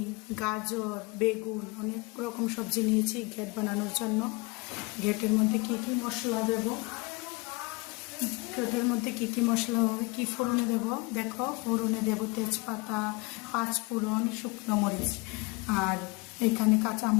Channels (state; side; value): quieter; right; 25.7 dB